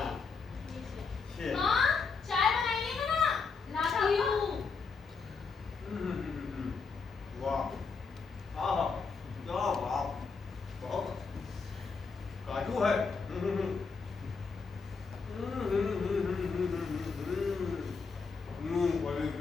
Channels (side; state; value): right; quieter; 4.9 dB